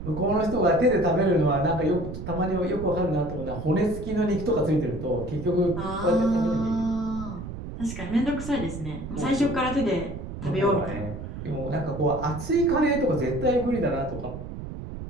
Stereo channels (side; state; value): right; noise; rumble, 9 dB below the sound